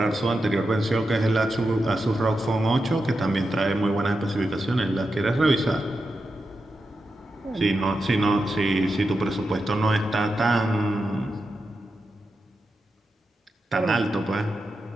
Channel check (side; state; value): both; normal; correlation 0.88